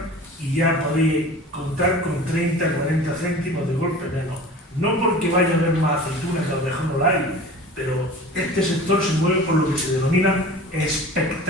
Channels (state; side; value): normal; both; correlation 0.40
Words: y ya podéis contar con 30-40 céntimos de golpe menos. No porque vaya a haber más aceitunas, que a lo mejor no la hay, pero este sector se mueve por lo que se denomina